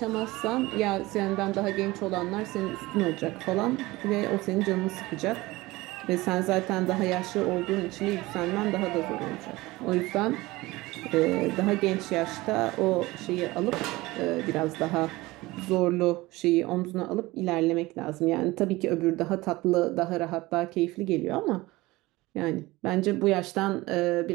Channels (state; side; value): quieter; left; 20.2 dB